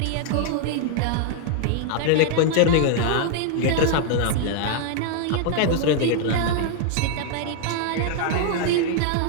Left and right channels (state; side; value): different; both; correlation 0.00